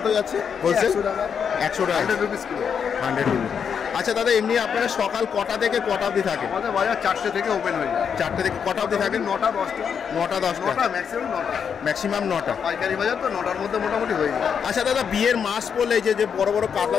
যাচ্ছে হোলসেল? 100 টাকা। 100 টাকা, 100 রুপিস কিলো। 100 রুপিস। আচ্ছা দাদা, এমনি আপনারা সকাল কটা থেকে কটা অবধি থাকে? আমাদের বাজার 4টে থেকে ওপেন হয়ে যায়। 4টে থেকে কটা অবধি থাকে? 9টা 10টা। 9টা 10টা, ম্যাক্সিমাম 9টা। ম্যাক্সিমাম 9টা। পাইকারি বাজার তো 9টার মধ্যে মোটামুটি হয়ে যায়। আচ্ছা দাদা, বিয়ের মাস পড়লে যে বড় বড়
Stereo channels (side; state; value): right; quieter; 7.1 dB